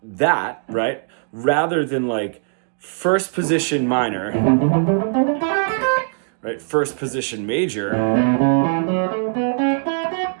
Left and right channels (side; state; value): left; silent; digital silence